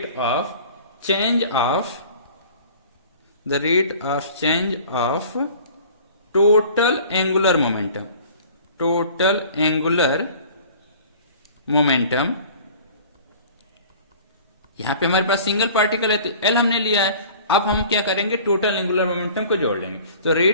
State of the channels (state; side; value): inverted; both; correlation -0.46